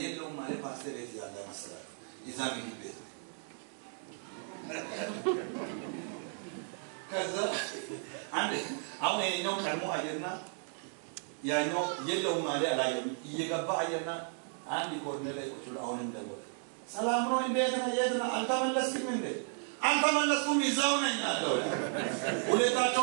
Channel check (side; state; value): left; silent; 55 dB below the other